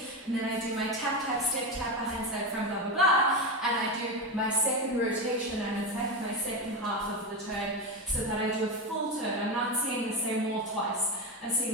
and then I do my tap, tap, step, tap, behind, side, front, blah, blah, blah, and I do my second rotation, and it's like my second half of the turn, so that I do a full turn. I'm not seeing the same wall twice. I'm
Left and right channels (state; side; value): normal; both; correlation 0.16